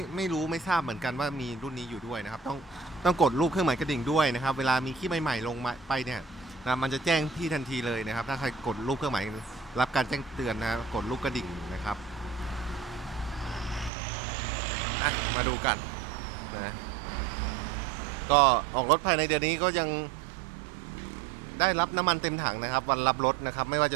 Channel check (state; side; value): drops out; left; at 13.9 s